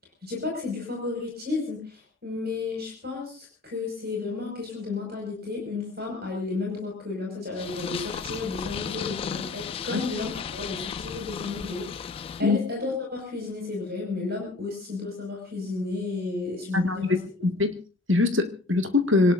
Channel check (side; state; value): right; quieter; 3.2 dB